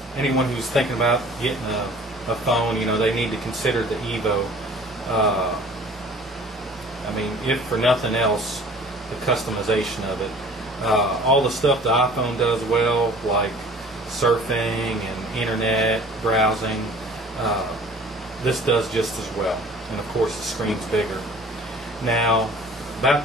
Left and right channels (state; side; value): normal; both; correlation 0.48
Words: anyone who's thinking about getting a phone, they need to consider the EVO. I mean, if for nothing else, the customization of it. All the stuff the iPhone does well, like surfing and internet browsing, this does just as well. And of course the screen's bigger. Now, about